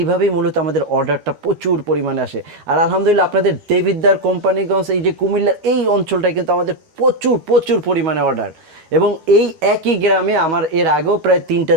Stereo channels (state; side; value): late; left; 12 ms